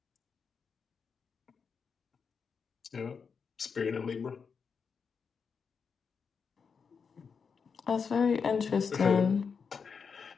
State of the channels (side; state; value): right; quieter; 5.8 dB